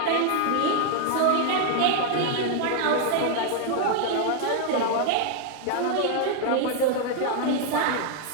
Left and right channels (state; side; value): different; both; correlation 0.00